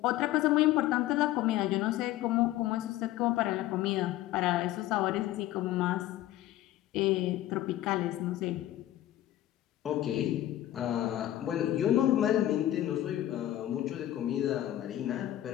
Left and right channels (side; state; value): right; quieter; 14.0 dB